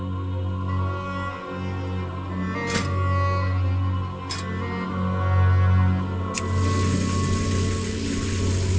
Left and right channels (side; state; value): both; identical; correlation 1.00